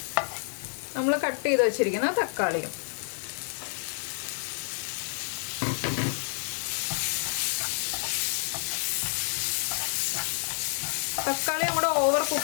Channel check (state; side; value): silent; right; digital silence